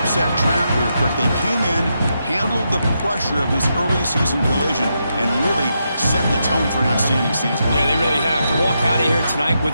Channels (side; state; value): both; inverted; correlation -0.83